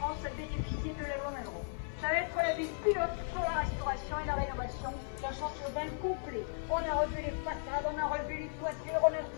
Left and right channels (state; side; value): silent; right; 54 dB below the other